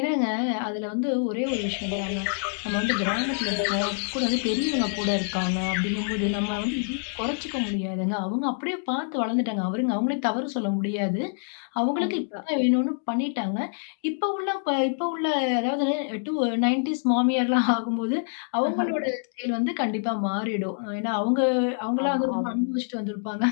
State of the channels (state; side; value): silent; right; digital silence